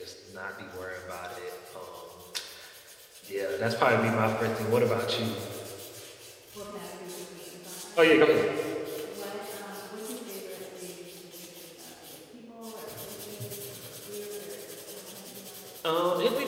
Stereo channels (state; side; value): identical; both; correlation 1.00